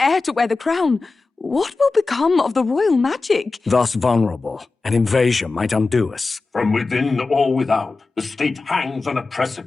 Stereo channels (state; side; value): quieter; right; 3.8 dB